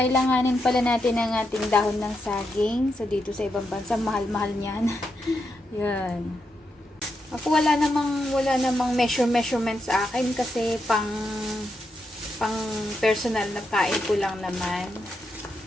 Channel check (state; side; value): normal; both; correlation 0.84